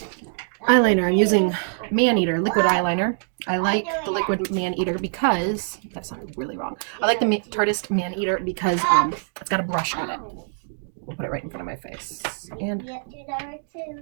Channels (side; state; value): left; silent; 63 dB below the other